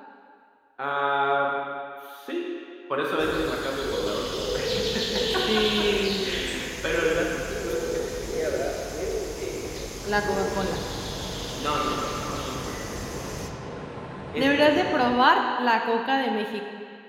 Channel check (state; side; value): identical; both; correlation 1.00